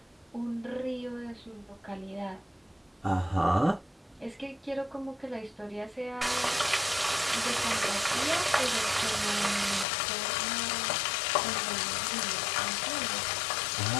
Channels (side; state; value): right; drops out; at 9.9 s